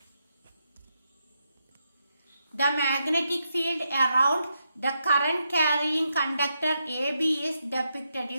The magnetic field around the current carrying conductor AB is depicted.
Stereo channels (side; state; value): both; inverted; correlation -0.83